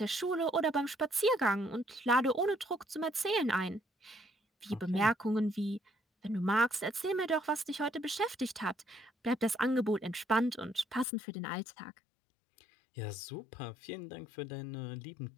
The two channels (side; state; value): right; drops out; at 11.1 s